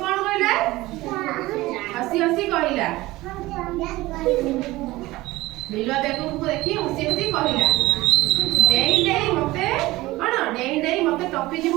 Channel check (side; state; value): left; quieter; 18.9 dB